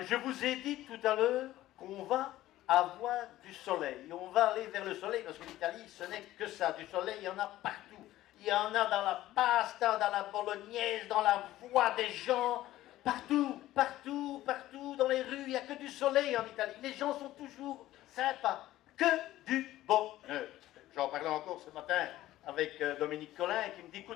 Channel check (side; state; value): right; quieter; 15.0 dB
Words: je vous ai dit tout à l'heure qu'on va avoir du soleil. On va aller vers le soleil parce que l'Italie, ce n'est que ça. Du soleil, il y en a partout. Il y en a dans la pasta, dans la bolognaise, dans la voix des gens. Partout, partout, partout, dans les rues, il n'y a que du soleil en Italie. Les gens sont toujours sympas. Que du bonheur. J'en parlais encore ce matin avec Dominique Collin qui me dit,